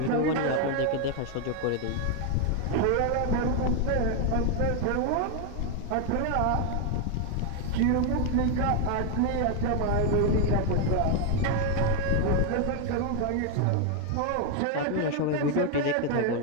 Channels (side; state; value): both; different; correlation 0.01